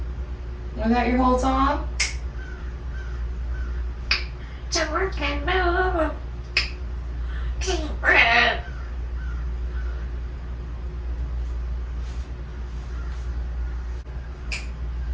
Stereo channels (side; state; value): both; identical; correlation 1.00